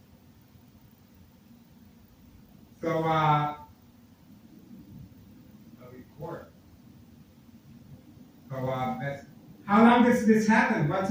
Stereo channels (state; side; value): identical; both; correlation 1.00